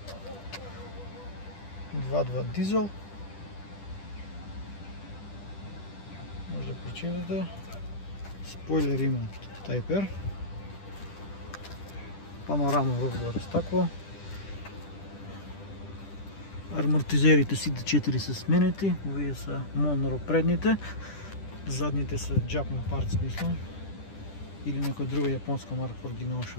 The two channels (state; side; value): late; right; 10 ms